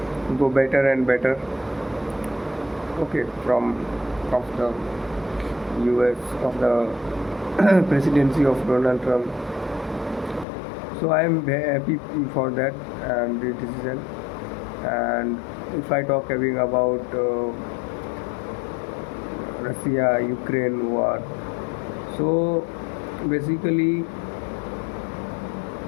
go better and better. Okay, from of the US, of the presidency of Donald Trump. So I am very happy for that and the decision. And if I talk about Russia-Ukraine war, so basically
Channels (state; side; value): drops out; right; at 10.5 s